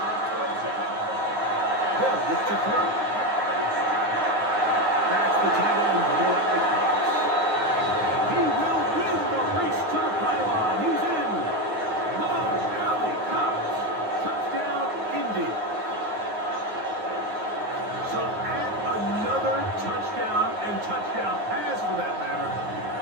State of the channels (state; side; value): late; left; 9.5 ms